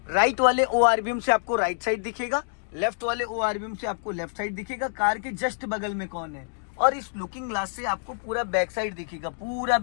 राइट वाले ORBM से आपको राइट साइड दिखेगा, लेफ्ट वाले ORBM से आपको लेफ्ट साइड दिखेगा। कार के जस्ट बगल में कौन है, और इस लुकिंग ग्लास से आपको पूरा बैक साइड दिखेगा, पूरा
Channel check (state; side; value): silent; right; digital silence